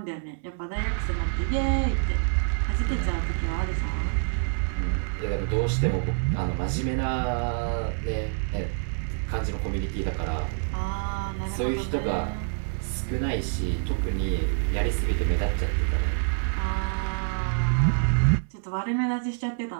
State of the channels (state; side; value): silent; left; 60 dB below the other